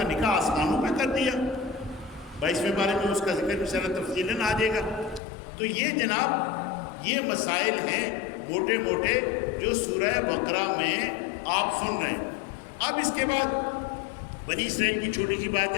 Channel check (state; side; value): drops out; right; at 5.2 s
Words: نکاح آسمانوں پہ کر دیا، 22ویں بارے میں اس کا ذکر بھی سارا تفصیلاً آ جائے گا۔ تو یہ جناب یہ مسائل ہیں موٹے موٹے جو سورہ بقرہ میں آپ سن رہے ہیں۔ اب اس کے بعد بنی اسرائیل کی چھوٹی سی بات